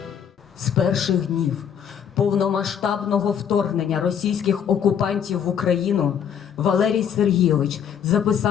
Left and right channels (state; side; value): quieter; right; 8.3 dB